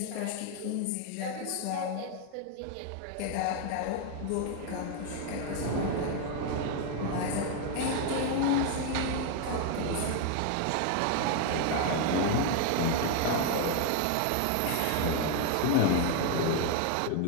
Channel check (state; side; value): different; both; correlation 0.00